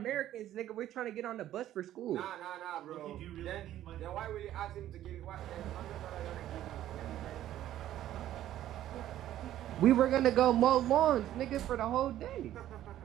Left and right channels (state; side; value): quieter; left; 12.7 dB